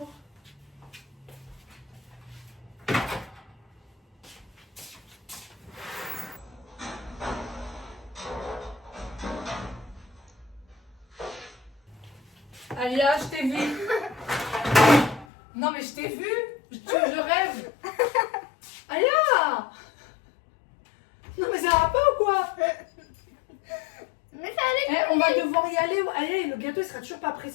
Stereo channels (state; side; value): drops out; right; at 15.2 s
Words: Alia, je t'ai vu. Non mais je t'ai vu. Je rêve. Alia. Non mais ça va pas ou quoi? Mais ça allait. On va devoir y aller. Allez, le gâteau il sera toujours pas prêt.